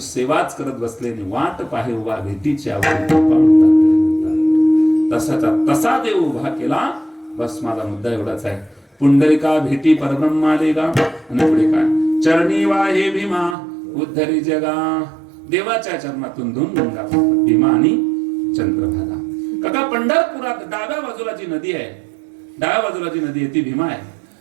करत बसलेने वाट पाहे उभा भेटीची आवड. तसाचा तसा देव उभा केला. बस माझा मुद्दा एवढाच आहे. पुंडलिका भेटी परब्रह्मा लेगा. आणि पुढे काय? चरणी वाहे भीमा उद्धरी जगा. देवाच्या चरणातून दोन गंगा, भीमा आणि चंद्रभागा. काका, पंढरपुरात डाव्या बाजूला जी नदी आहे, डाव्या बाजूला जी नदी आहे ती भीमा आहे,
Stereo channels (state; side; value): drops out; left; at 13.6 s